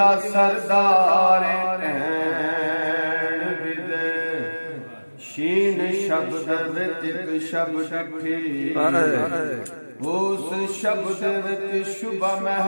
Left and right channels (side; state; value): both; inverted; correlation -1.00